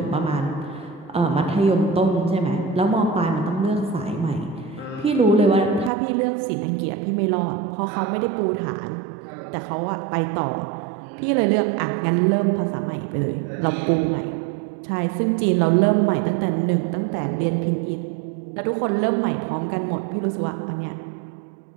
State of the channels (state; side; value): drops out; left; at 5.9 s